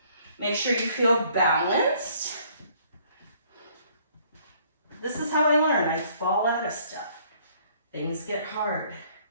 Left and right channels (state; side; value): inverted; both; correlation -0.61